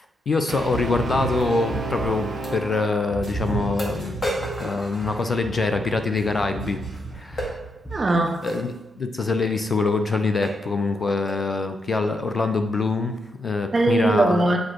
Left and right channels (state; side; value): normal; both; correlation 0.81